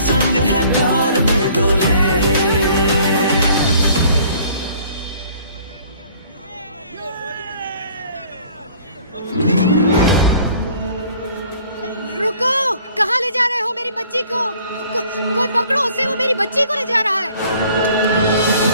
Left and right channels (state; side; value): inverted; both; correlation -0.55